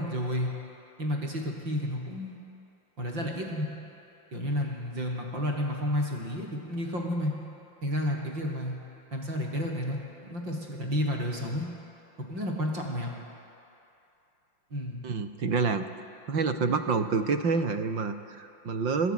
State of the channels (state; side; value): late; left; 5.7 ms